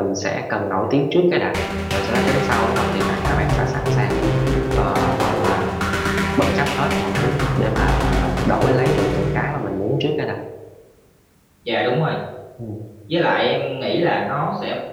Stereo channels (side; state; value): both; identical; correlation 1.00